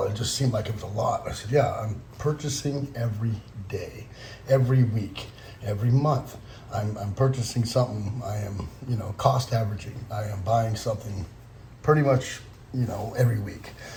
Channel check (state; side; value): identical; both; correlation 1.00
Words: it just seemed like it was a lot. I said, yeah, I'm purchasing every day, every week, every month. I'm purchasing something. I am, cost averaging. I am buying something pretty much, every week.